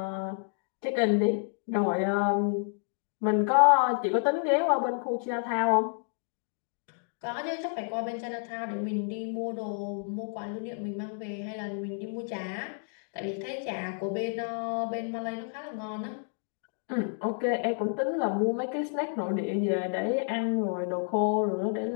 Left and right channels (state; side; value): silent; right; 58 dB below the other